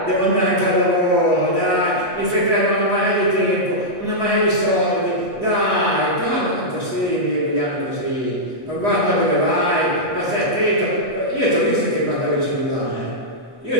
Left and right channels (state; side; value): late; left; 7.9 ms